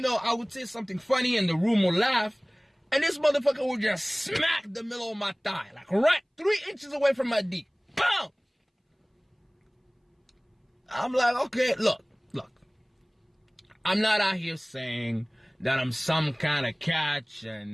know, I would say something funny and the room would laugh, and this motherfucker would just smack the middle of my thigh, like right 3 inches away from my D. Boom! I'm like, okay, look. I'm not out here saying that I'm some kind of catch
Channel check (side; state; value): both; identical; correlation 1.00